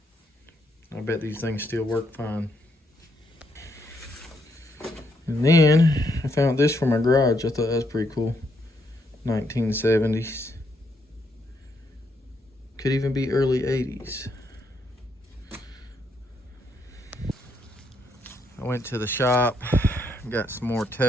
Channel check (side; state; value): both; normal; correlation 0.76